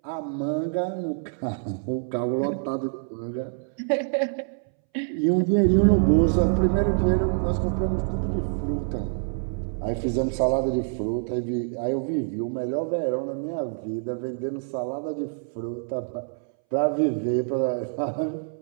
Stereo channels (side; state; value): left; silent; 61 dB below the other